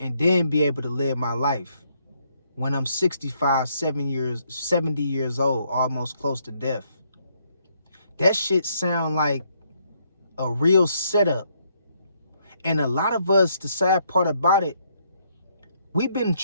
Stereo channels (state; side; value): inverted; both; correlation -0.72